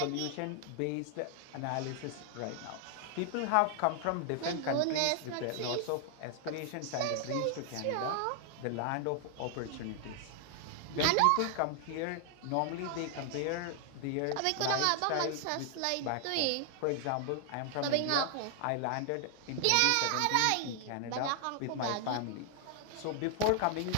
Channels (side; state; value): both; different; correlation 0.00